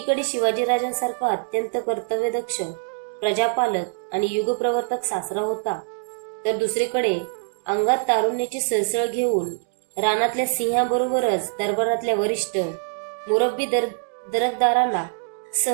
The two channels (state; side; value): silent; left; digital silence